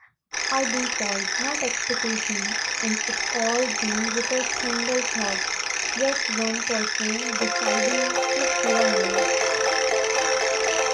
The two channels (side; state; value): both; identical; correlation 1.00